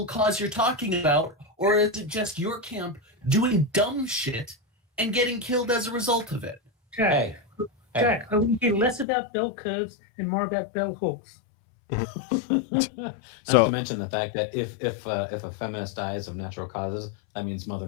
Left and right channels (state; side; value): drops out; right; at 9.1 s